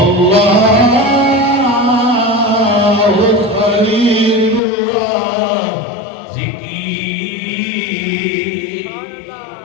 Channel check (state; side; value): drops out; right; at 4.6 s